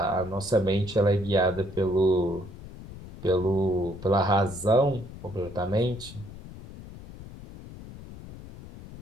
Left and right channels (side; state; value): left; noise; rumble, 15 dB below the sound